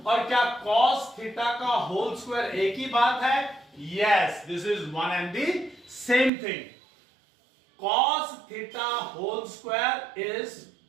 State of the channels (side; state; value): left; drops out; at 6.3 s